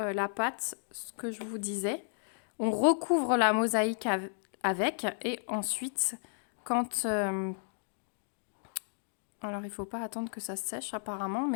pâte, ce que je vous disais. On recouvre la mosaïque avec et ensuite quand alors il faut pas attendre que ça sèche apparemment,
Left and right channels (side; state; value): right; silent; digital silence